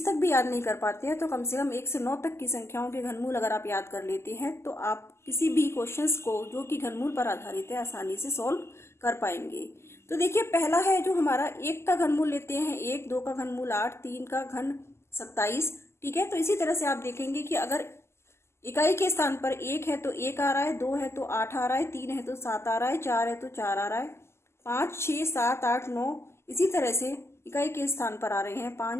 तक भी याद नहीं कर पाते हैं तो कम से कम 1 से 9 तक की संख्याओं के घनमूल अगर आप याद कर लेते हैं तो आप किसी भी क्वेश्चंस को जो कि घनमूल पर आधारित है आसानी से सॉल्व कर पाएंगे। तो देखिए, पहला है जो हमारा 1 का घनमूल लेते हैं 1, 2 का घनमूल 8, 3 का घन 27। ठीक है, तो इसी तरह से आप देखेंगे कि अगर इकाई के स्थान पर 1 है तो 1 आ रहा है, 2 है तो 8 आ रहा है, 3 है तो 7 आ रहा है, 4 है तो 4 आ रहा है, 5, 6, 7, 8, 9 इसी तरह से इकाई के स्थान पर आ रहे हैं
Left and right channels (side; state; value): right; late; 0.13 ms